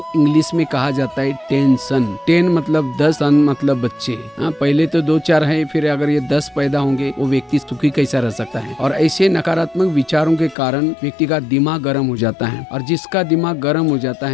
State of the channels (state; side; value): drops out; right; at 10.6 s